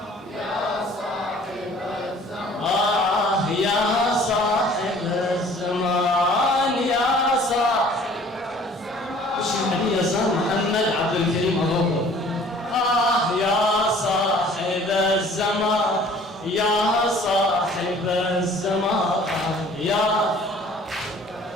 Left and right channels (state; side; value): normal; both; correlation 0.52